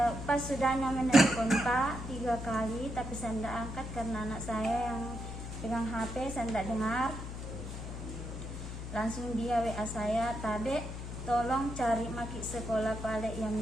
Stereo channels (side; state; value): left; noise; hum, 7 dB below the sound